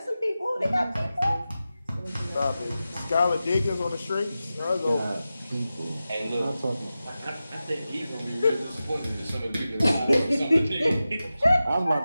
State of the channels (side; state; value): both; inverted; correlation -0.94